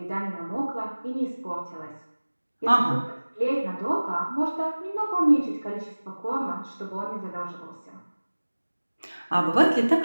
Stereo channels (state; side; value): inverted; both; correlation -1.00